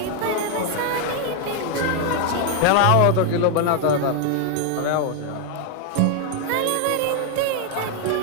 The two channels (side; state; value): both; different; correlation 0.01